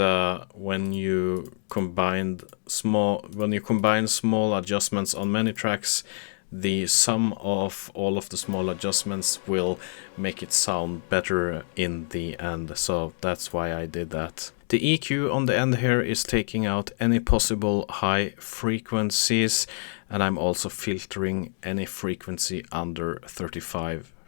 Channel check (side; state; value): right; silent; digital silence